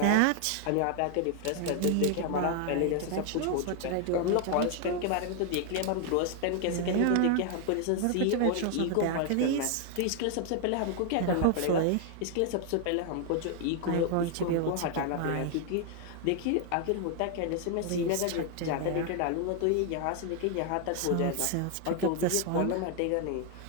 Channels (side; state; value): both; different; correlation 0.00